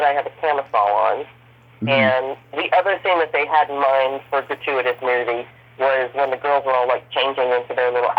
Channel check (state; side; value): identical; both; correlation 1.00